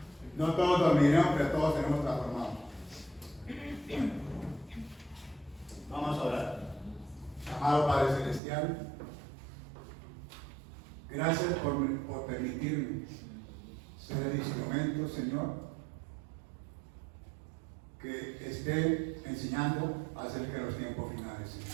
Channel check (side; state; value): left; drops out; at 8.4 s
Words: no todos dormiremos, pero todos seremos transformados. Vamos a orar. Amado Padre Celestial, gracias por permitirme ser el instrumento, Señor, que esté enseñando acerca de los tiempos finales,